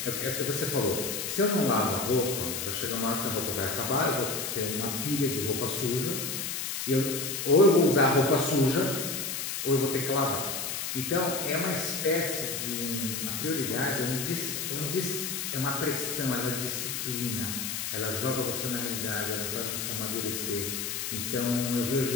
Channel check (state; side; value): noise; left; hiss, 3 dB below the sound